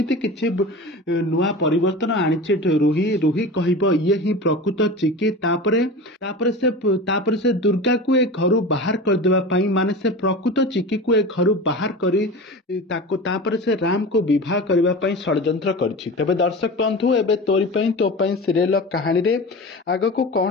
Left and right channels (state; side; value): normal; both; correlation 0.31